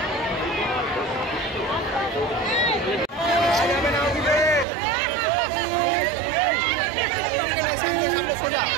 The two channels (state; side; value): drops out; left; at 4.7 s